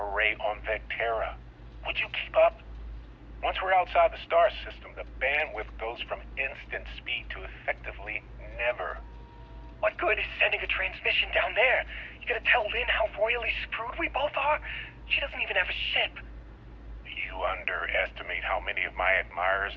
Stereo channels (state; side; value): identical; both; correlation 1.00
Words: on Vectera. Would you keep up? Once we're outside the star system, the bandwidth goes from instant speed to effectively never. What good is sending a transmission down there? You gonna tell Lynn how royally screwed we both are? She doesn't even have a ship. You underestimate how many of my admirers